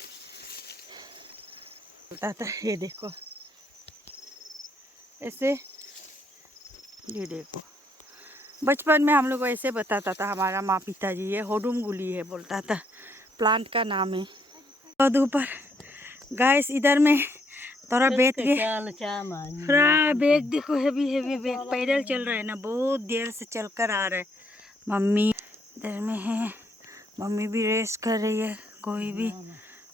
बोलता था। ये देखो ऐसे ये देखो बचपन में हम लोग को ऐसे बताता था हमारा माँ पिताजी। ये होदुम गुली है बोलता था। प्लांट का नाम है। और ऊपर गाइस इधर में थोड़ा बैठ के पूरा बैग देखो हेवी हेवी बैग पैदल चल रहा है ना बहुत देर से चल कर आ रहा है। मम्मी इधर में है। मम्मी भी रेस्ट कर रही है। कोई भी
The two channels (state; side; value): normal; both; correlation 0.72